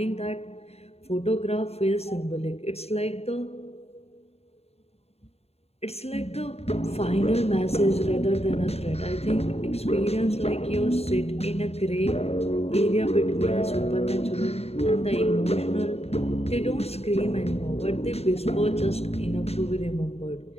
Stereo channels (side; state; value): right; late; 0.30 ms